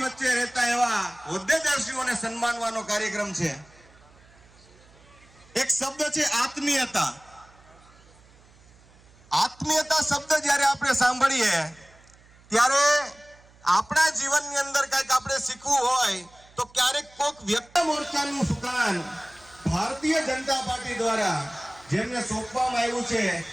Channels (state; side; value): noise; right; hum, 27 dB below the sound